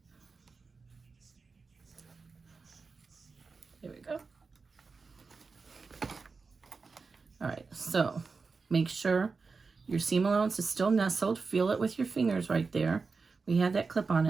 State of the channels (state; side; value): quieter; left; 4.5 dB